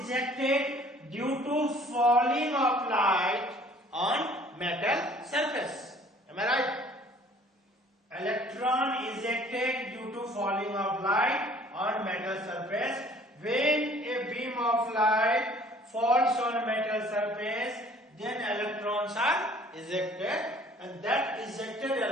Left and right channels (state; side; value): normal; both; correlation 0.54